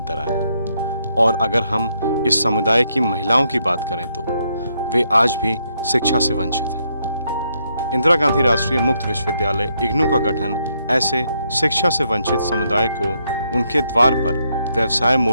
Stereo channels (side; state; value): both; inverted; correlation -0.76